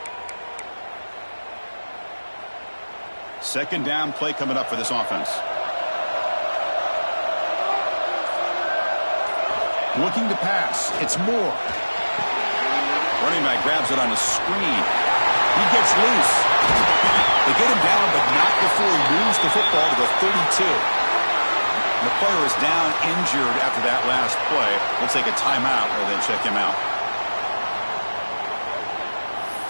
Second down play coming up for this offense. Looking to pass. It's Moore. Running back grabs it on a screen. He gets loose. They get him down, but not before he moves the football to the 32. And the player is down injured after that last play. We'll take a timeout and then check him out.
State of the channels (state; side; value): inverted; both; correlation -1.00